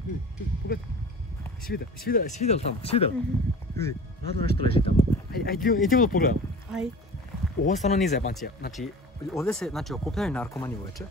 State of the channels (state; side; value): normal; both; correlation 0.39